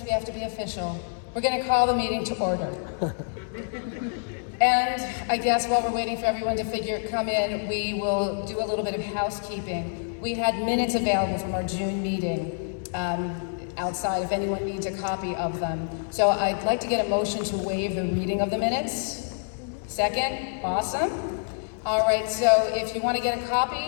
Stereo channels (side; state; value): right; silent; digital silence